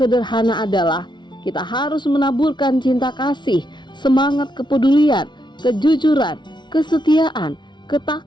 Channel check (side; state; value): right; late; 0.22 ms